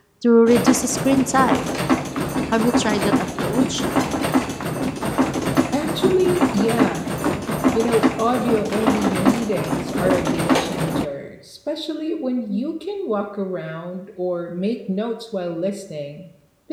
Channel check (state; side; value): identical; both; correlation 1.00